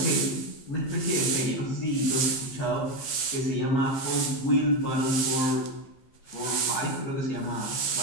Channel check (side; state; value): right; late; 15 ms